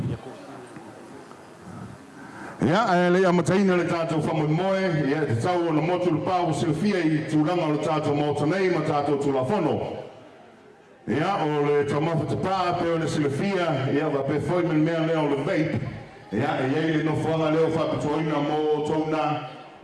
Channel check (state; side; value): identical; both; correlation 1.00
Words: Ia, le amataina le tātou whamoimoe, ia te tau o na motu le pāu silfia i tūranga o le tātou mautanei ma tātou tūlafono. Ia, o le taumafa te pā, pe o le silfia, ia, wa pe foi men mea leo le vape. Ia, e iei le nofuanga leo whapitoina mo tōna,